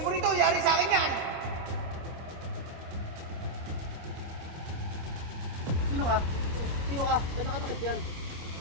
mo rito, yari sa akin yan! Sino ka? Sino ka? Ba't nakatakit yan?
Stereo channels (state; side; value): late; left; 26 ms